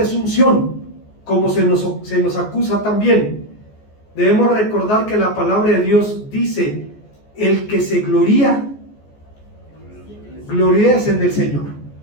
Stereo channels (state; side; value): late; right; 14 ms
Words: como se nos acusa también. Debemos recordar que la palabra de Dios dice: el que se gloría, gloríese en el Señor.